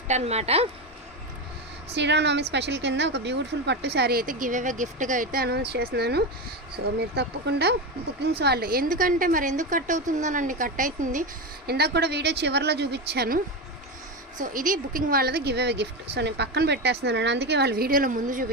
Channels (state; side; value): normal; both; correlation 0.16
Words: అనమాట. శ్రీరామనవమి స్పెషల్ కింద ఒక బ్యూటిఫుల్ పట్టు శారీ అయితే గివ్ అవే గిఫ్ట్గా అయితే అనౌన్స్ చేస్తున్నాను. సో మీరు తప్పకుండా బుకింగ్స్ వాళ్ళు, ఎందుకంటే మరి ఎందుకు కట్ అవుతుందోనండి, కట్ అవుతుంది. ఇందాక కూడా వీడియో చివరిలో చూపించాను. సో ఇది బుకింగ్ వాళ్ళది గివ్ అవే గిఫ్ట్. సో నేను పక్కన పెట్టేస్తున్నాను, అందుకే వాళ్ళ వీడియోలో ముందు